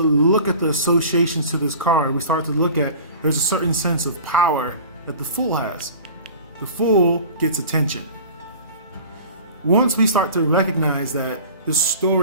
at the associations to this card, we start to look at, there's a certain sense of power that the Fool has. The Fool gets attention. Once we start to recognize that, the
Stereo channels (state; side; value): inverted; both; correlation -0.40